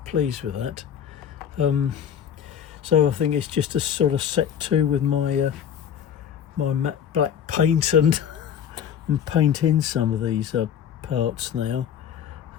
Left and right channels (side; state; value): right; quieter; 8.8 dB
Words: pleased with that. So I think it's just a sort of set to with my my matte black paint and paint in some of these parts now.